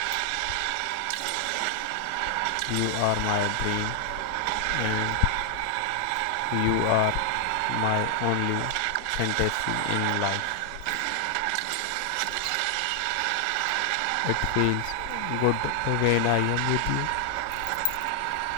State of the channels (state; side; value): different; both; correlation 0.00